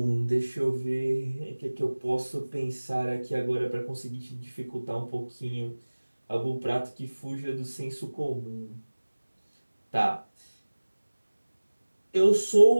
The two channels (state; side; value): inverted; both; correlation -1.00